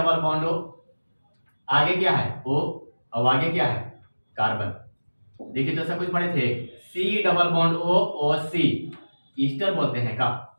बॉन्ड O, आगे क्या है O, और आगे क्या है कार्बन। देखिए तो सब कुछ पढ़े थे, C double bond O OC, Easter बोलते हैं का,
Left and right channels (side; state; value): both; inverted; correlation -1.00